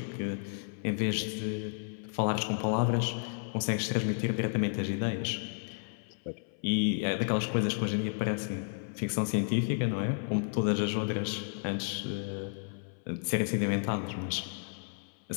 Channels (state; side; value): silent; right; 56 dB below the other